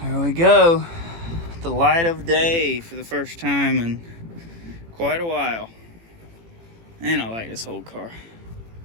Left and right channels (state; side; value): late; left; 18 ms